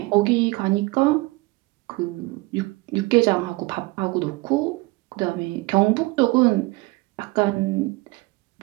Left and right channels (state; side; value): quieter; left; 22.6 dB